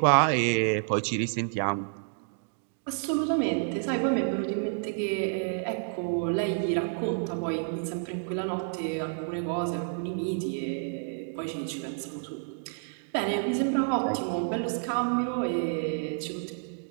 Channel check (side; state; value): left; silent; digital silence